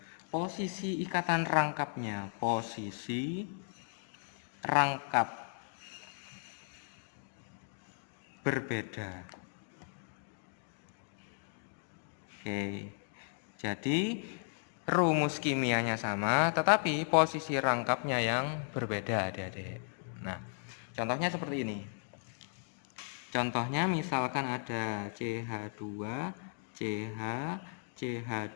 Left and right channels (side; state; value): right; silent; digital silence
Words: Posisi ikatan rangkapnya, posisi rangkap berbeda. Oke, jadi rumus kimianya sama, tetapi posisi rangkapnya yang berbeda, adik-adik. Nah, contohnya seperti ini. Contohnya misalkan ada CH2, CH,